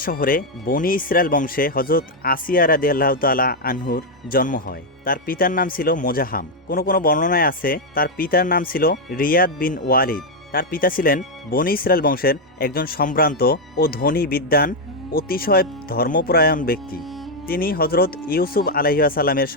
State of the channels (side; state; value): both; normal; correlation 0.01